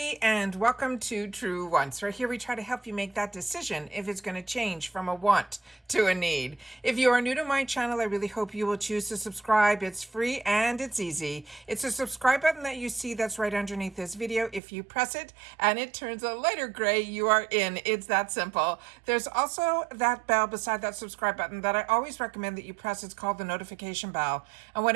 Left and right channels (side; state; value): left; drops out; at 14.6 s